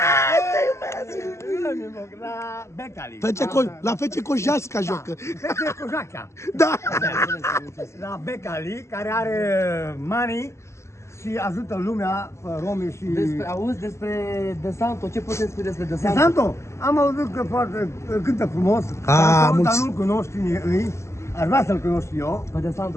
La Becali. La FC Cojasca joacă. FC Cojaca. Da. La Becali, care are money și ajută lumea, romii și... Auzi despre De Santo, ce puteți spune despre De De Santo? Santo? Am auzit că foarte cântă frumos, dar nu-l cunoști ei. Aș vrea să-l cunosc eu. Pe De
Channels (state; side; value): late; right; 0.13 ms